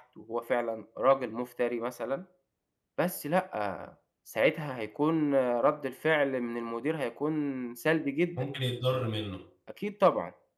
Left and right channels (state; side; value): identical; both; correlation 1.00